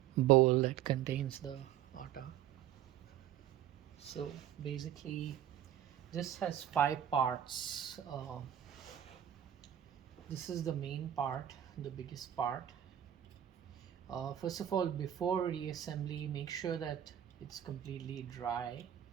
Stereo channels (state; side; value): quieter; left; 10.9 dB